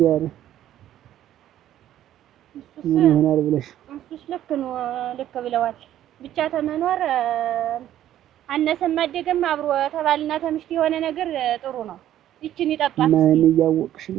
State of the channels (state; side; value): quieter; left; 12.1 dB